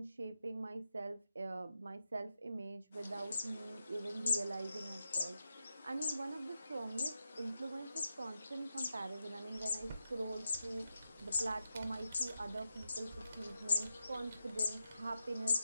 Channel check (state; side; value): inverted; both; correlation -0.87